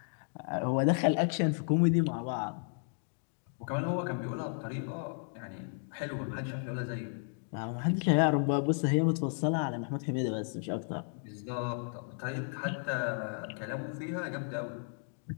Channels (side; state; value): right; silent; 55 dB below the other